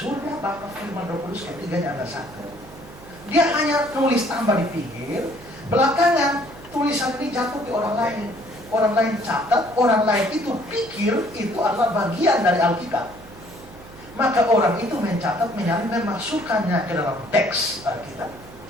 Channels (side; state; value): right; noise; hum, 20 dB below the sound